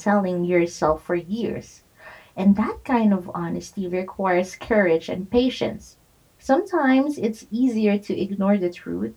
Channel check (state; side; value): identical; both; correlation 1.00